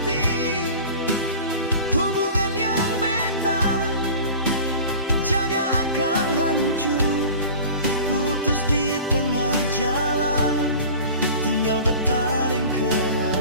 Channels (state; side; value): inverted; both; correlation -0.39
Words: Hubungan yang beta jaga akan hancur, putus di tengah jalan. Tinggal bertaring